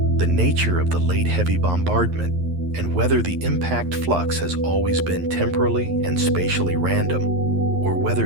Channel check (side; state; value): left; late; 11 ms